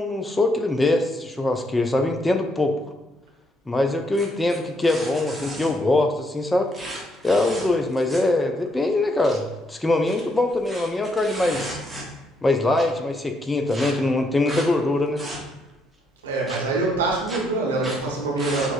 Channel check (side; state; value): both; normal; correlation 0.74